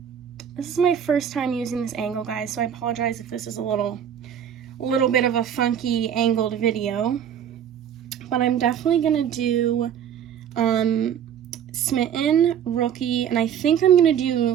this is my first time using this angle, guys, so I apologize if this is a little bit of a funky angled video, but I'm definitely gonna do Smitten, Rookie, and I think I'm gonna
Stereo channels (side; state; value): left; quieter; 9.0 dB